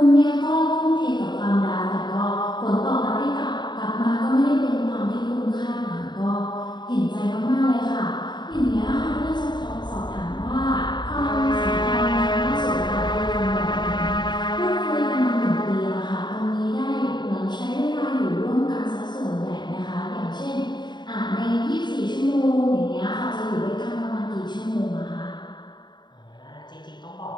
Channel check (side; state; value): right; late; 0.21 ms